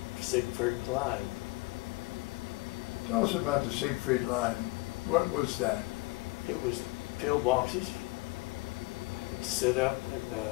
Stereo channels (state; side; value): quieter; right; 23.6 dB